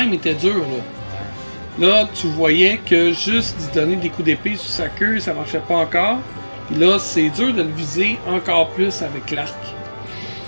il était dur, là. Là, tu voyais que juste d'y donner des coups d'épée sur sa queue, ça marchait pas encore. Puis là, c'est dur de le viser encore plus avec l'arc.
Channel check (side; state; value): both; inverted; correlation -1.00